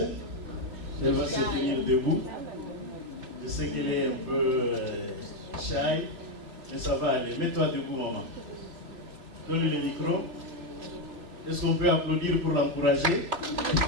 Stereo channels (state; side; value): late; left; 2.8 ms